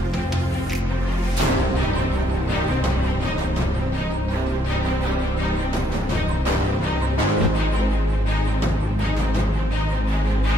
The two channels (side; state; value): both; normal; correlation 0.71